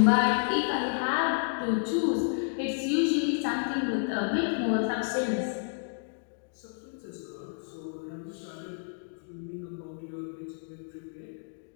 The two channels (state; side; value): silent; right; digital silence